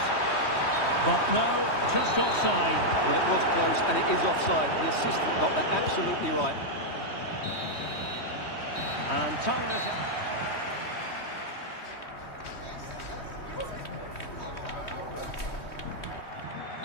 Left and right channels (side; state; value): right; late; 3.2 ms